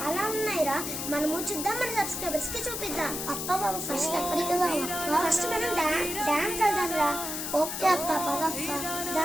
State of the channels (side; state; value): left; noise; hiss, 4 dB below the sound